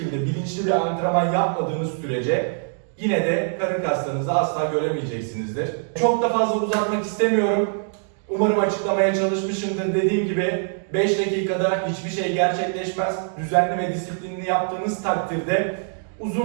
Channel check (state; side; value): silent; left; 63 dB below the other